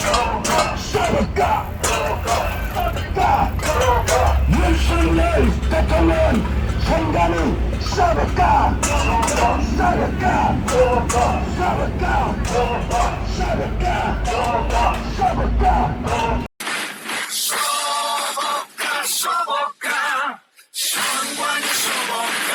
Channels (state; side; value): identical; both; correlation 1.00